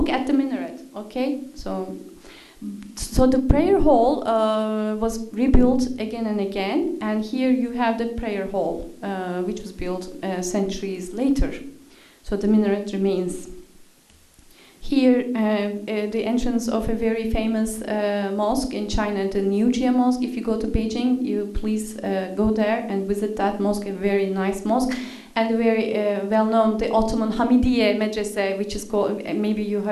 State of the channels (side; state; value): both; identical; correlation 1.00